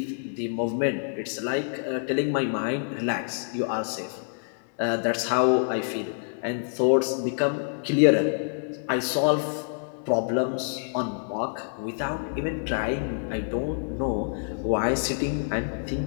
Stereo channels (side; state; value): right; silent; digital silence